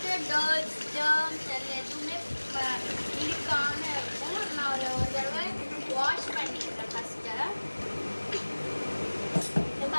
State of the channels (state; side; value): inverted; both; correlation -1.00